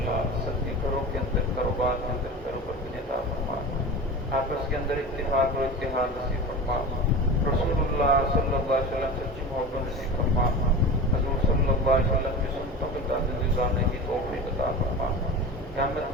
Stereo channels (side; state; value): both; normal; correlation 0.30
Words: سب کے گھروں کے اندر کاروبار کے اندر کاروبار کی عطا فرما. آپس کے اندر اتفاق اور اتحاد نصیب فرما. رسول اللہ صلی اللہ علیہ وسلم سچی محبت نصیب فرما. حضور صلی اللہ علیہ وسلم کی سنتوں کے تحت گزارنے کی توفیق عطا فرما. قیامت